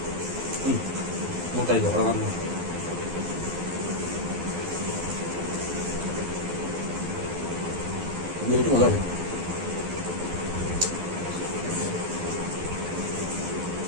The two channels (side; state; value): left; late; 12 ms